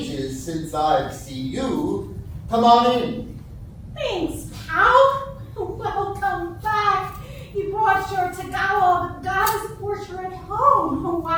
since I've seen you. Come on in. Thanks, pal. Welcome back. You brought your Tagawa goddess portrait home. Oh,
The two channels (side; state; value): both; identical; correlation 1.00